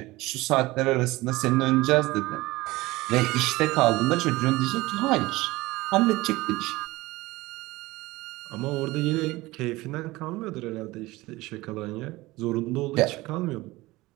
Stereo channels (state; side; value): quieter; left; 19.9 dB